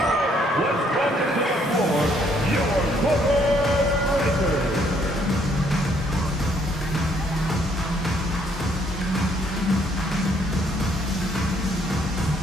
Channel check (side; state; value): both; normal; correlation 0.67